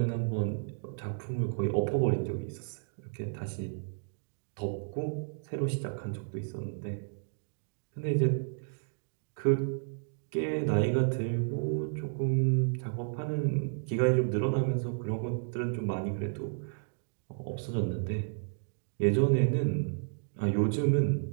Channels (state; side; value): silent; left; digital silence